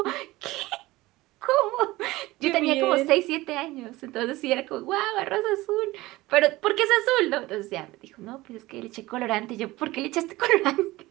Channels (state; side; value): quieter; left; 19.1 dB